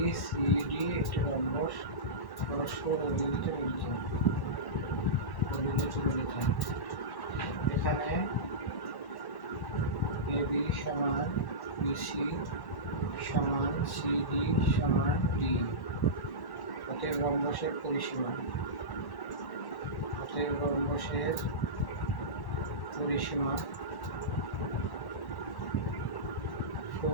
সি ডি একটি রম্বস পরস্পর ও বিন্দুতে মিলিত হয়। এখানে এ বি সমান বিসি সমান সিডি সমান ডি। অতএব রম্বসের পরিসীমা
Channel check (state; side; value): late; right; 1.1 ms